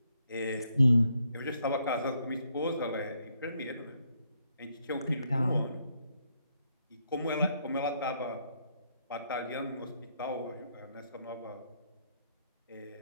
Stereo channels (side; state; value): both; inverted; correlation -0.75